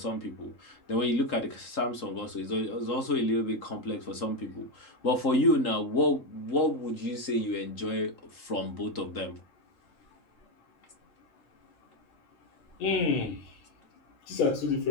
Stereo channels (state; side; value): late; right; 3.8 ms